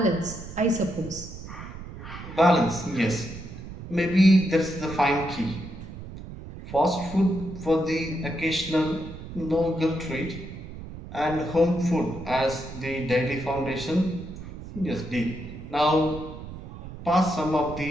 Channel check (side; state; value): right; noise; rumble, 12 dB below the sound